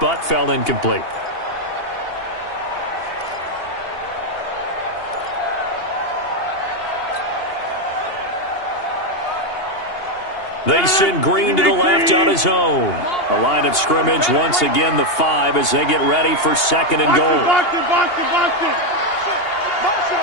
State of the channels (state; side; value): late; right; 2.8 ms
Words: fell incomplete. They send Green to the left on his own. The line of scrimmage, once again, the 5 as they get ready for 2nd and goal.